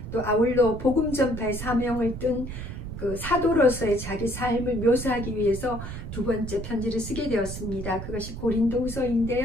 또 아울러 복음 전파의 사명을 뜬 그 사도로서의 자기 삶을 묘사하기 위해서 두 번째 편지를 쓰게 되었습니다. 그것이 고린도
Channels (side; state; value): right; noise; rumble, 8 dB below the sound